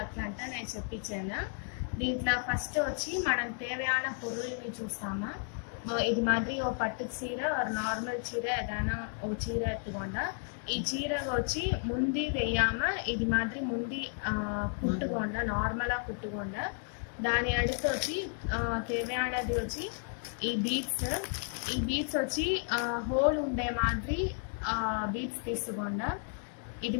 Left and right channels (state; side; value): silent; right; 56 dB below the other